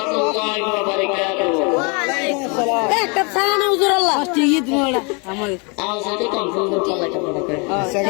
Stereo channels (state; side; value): quieter; right; 32.9 dB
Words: ওয়া বারাকাতুহু আওয়াজ তো কম করতে লাগে